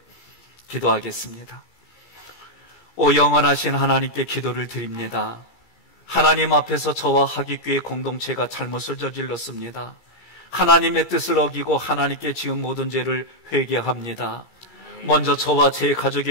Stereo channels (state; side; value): late; right; 17 ms